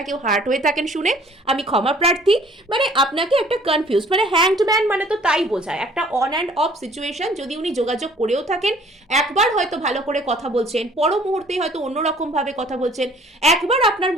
কেউ হার্ট হয়ে থাকেন শুনে, আমি ক্ষমা প্রার্থী। মানে আপনাকে একটা কনফিউজ, মানে হ্যাংড ম্যান মানে তো তাই বোঝায়, একটা অন অ্যান্ড অফ সিচুয়েশন। যদি উনি যোগাযোগ করেও থাকেন, একবার হয়তো ভালো করে কথা বলছেন, পর মুহূর্তেই হয়তো অন্যরকম ভাবে কথা বলছেন। একবার আপনার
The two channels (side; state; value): both; normal; correlation 0.55